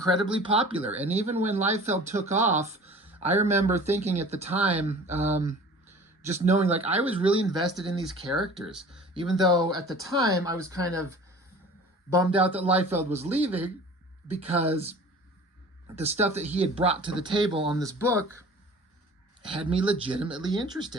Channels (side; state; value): both; normal; correlation 0.44